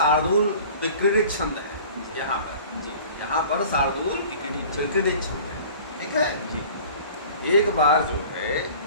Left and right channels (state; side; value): inverted; both; correlation -0.44